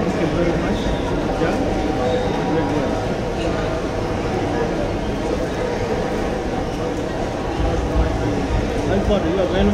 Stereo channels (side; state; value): both; identical; correlation 1.00